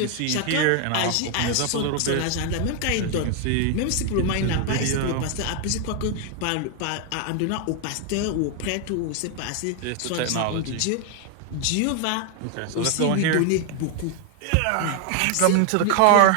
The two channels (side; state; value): both; different; correlation 0.01